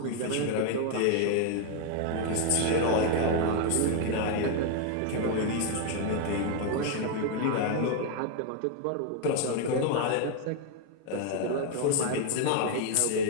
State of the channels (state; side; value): different; both; correlation 0.00